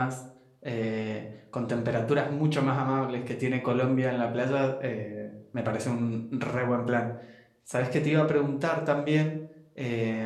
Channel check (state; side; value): identical; both; correlation 1.00